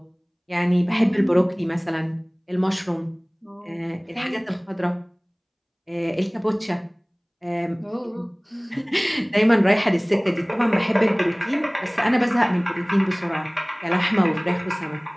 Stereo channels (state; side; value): identical; both; correlation 1.00